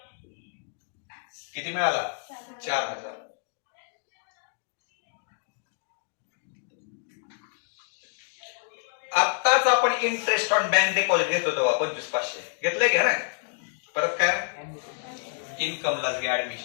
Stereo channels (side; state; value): right; silent; digital silence